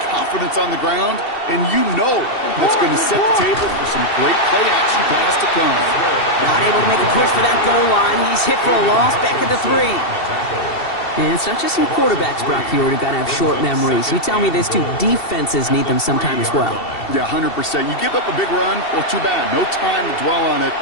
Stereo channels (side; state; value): right; late; 2.7 ms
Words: confidence on the ground, and you know that's going to set the table for some great play action pass to come. Not able to make a push for that goal line. He's hit for a loss back at the 3. And it's not just some quarterbacks, Brock, here who got to have short memories. You tell me this too, defenses need them sometime as well. Yeah, 100%. You give up a big run, well, too bad. No time to dwell on it